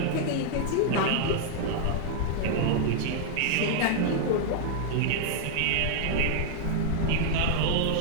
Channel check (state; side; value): different; both; correlation 0.00